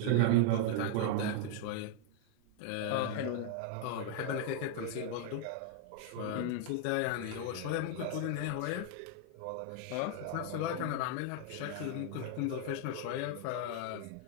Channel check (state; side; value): different; both; correlation 0.00